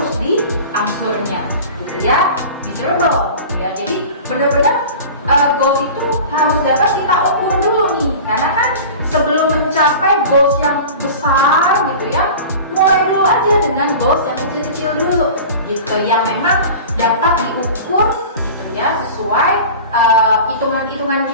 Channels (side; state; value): both; inverted; correlation -0.36